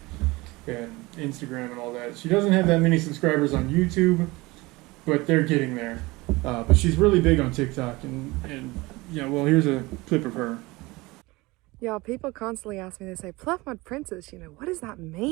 and Instagram and all that. She doesn't have that many subscribers on YouTube, but they're getting there. But she's really big on TikTok, and yeah, well, here's a clip of her. Y'all, people constantly ask me, they say, Pluff Mud Princess, you know, what does that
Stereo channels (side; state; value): left; quieter; 22.2 dB